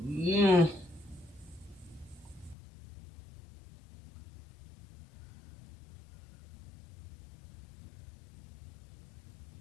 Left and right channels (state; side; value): drops out; right; at 2.6 s